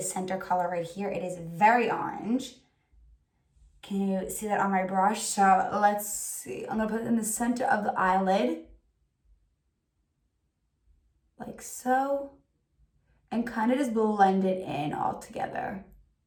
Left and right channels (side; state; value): both; identical; correlation 1.00